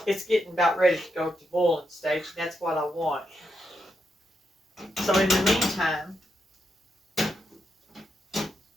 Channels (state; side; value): normal; both; correlation 0.83